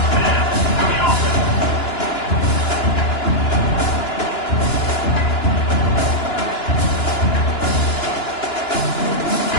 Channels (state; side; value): late; right; 2.9 ms